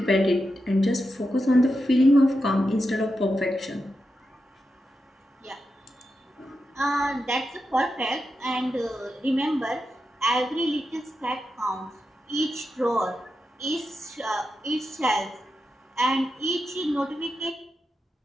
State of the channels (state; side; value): normal; both; correlation 0.88